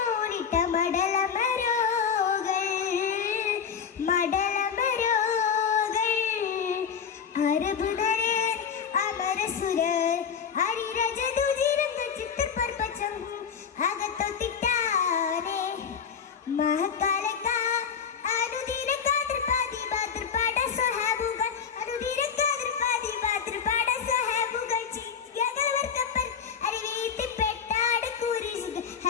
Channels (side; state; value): right; quieter; 7.0 dB